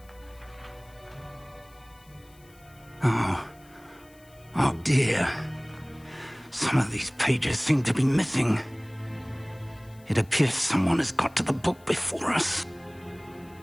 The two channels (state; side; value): noise; left; hiss, 28 dB below the sound